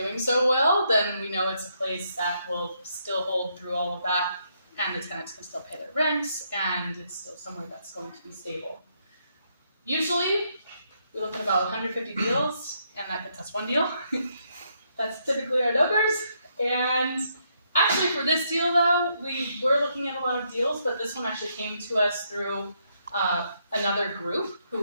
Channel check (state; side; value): inverted; both; correlation -0.75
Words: so well, then we know it's a place that will still hold through all of that, and the tenants can still pay their rents, and it's still somewhere that's going to be stable. Usually, we look at about 150 deals, and that gets us one deal. That's typically our numbers. And actually, for this deal, though, we were looking at a lot of deals, but this one actually came to us through another group